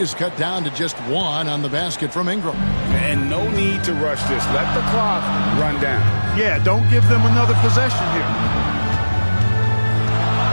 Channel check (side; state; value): both; inverted; correlation -1.00